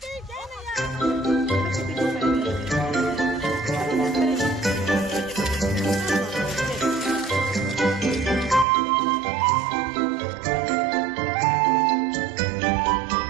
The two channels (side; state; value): left; drops out; at 8.7 s